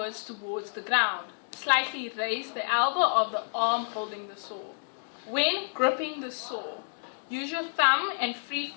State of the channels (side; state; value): right; silent; digital silence